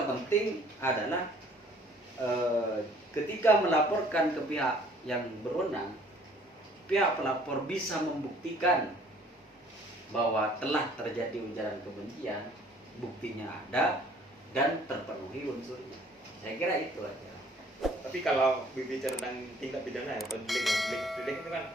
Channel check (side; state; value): both; normal; correlation 0.57